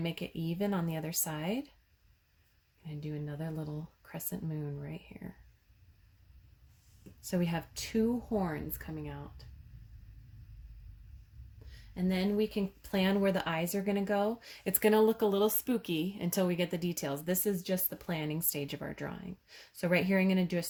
it even on the other side. I'm going to do another little crescent moon right here. So we have two horns coming out. And then we can plan where the eyes are going to go. It's going to look a little spooky until we get the details. This is just the planning stage of our drawing. So right here I'm going to do a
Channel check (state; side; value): identical; both; correlation 1.00